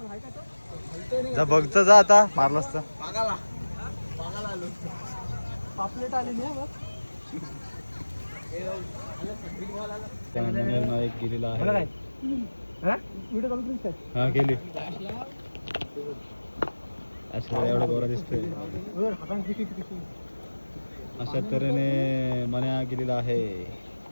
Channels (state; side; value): inverted; both; correlation -1.00